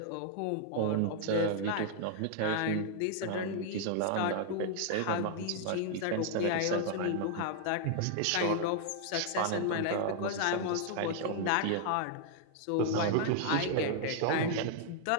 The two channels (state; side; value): different; both; correlation 0.00